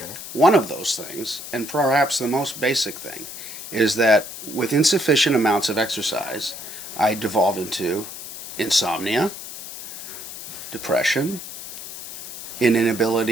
One of those things, and perhaps the most basic thing, is that with insufficient amounts of exercise, I devolve into insomnia, depression, an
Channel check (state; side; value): noise; left; hiss, 10 dB below the sound